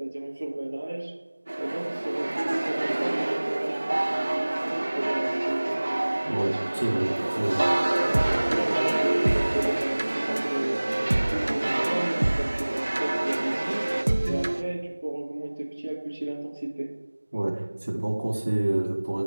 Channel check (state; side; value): inverted; both; correlation -1.00